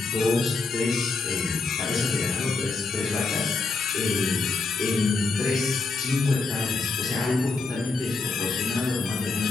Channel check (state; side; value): quieter; right; 3.9 dB